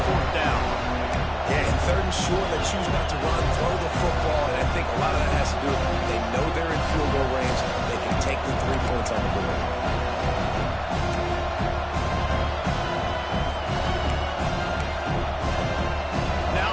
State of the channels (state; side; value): identical; both; correlation 1.00